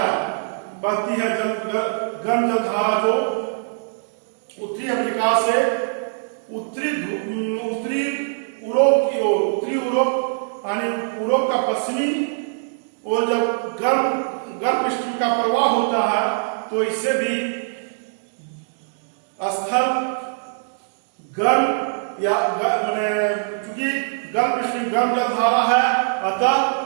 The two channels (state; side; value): silent; left; digital silence